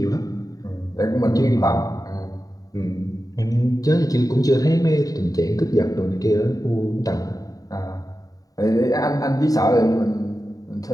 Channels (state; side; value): late; right; 0.18 ms